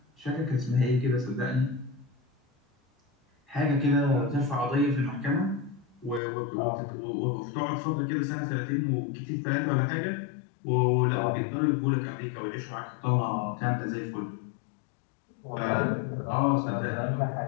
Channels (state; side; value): drops out; right; at 6.2 s